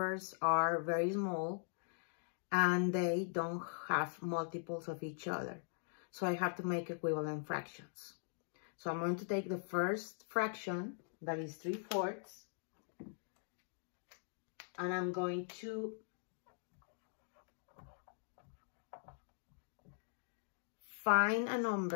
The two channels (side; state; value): right; silent; digital silence